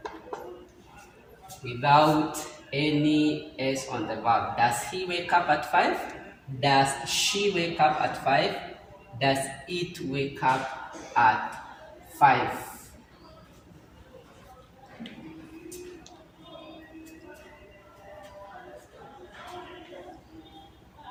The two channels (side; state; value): both; identical; correlation 1.00